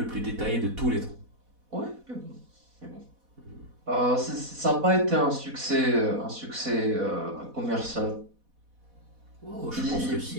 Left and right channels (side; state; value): left; late; 4.1 ms